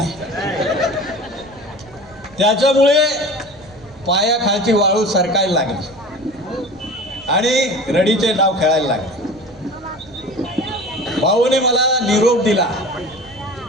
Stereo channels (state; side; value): noise; right; rumble, 25 dB below the sound